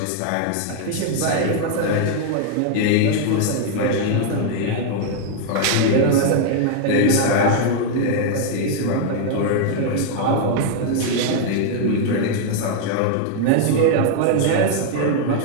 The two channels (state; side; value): different; both; correlation 0.00